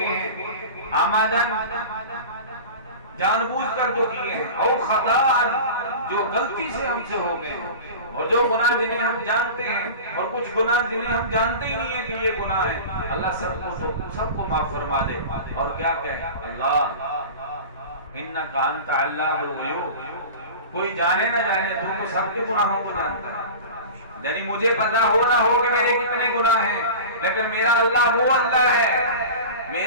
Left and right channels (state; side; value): inverted; both; correlation -0.33